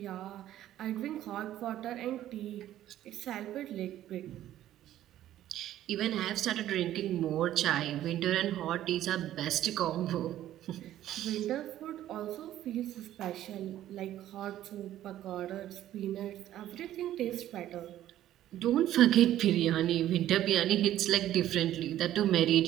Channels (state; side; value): quieter; left; 12.8 dB